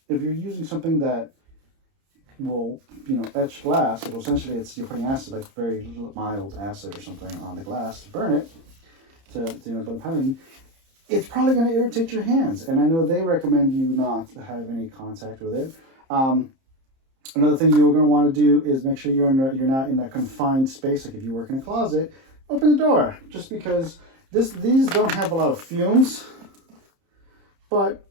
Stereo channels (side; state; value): left; late; 30 ms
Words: if you're using something that will, etch glass, it will essentially, you're putting acid, like very mild acid or something on the glass to burn it, to put a pattern. It's probably going to irritate your hands, and I know they recommend you not have any contact with it. Another thing you're going to want to do is make sure you're not in a confined space. Like if you work in a closet, open the door, just because these don't have a lot of fumes, but